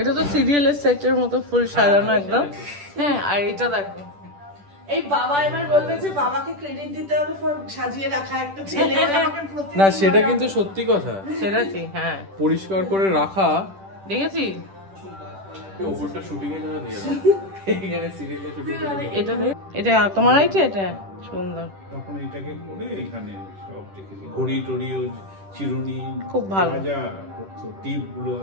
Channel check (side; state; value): left; late; 10 ms